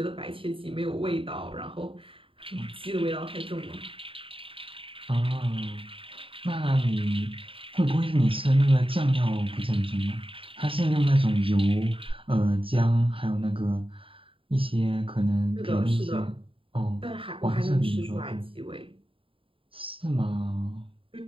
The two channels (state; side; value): late; left; 0.26 ms